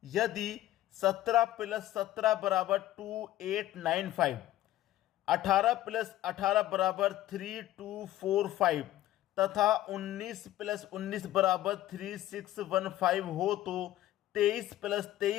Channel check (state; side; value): quieter; right; 14.3 dB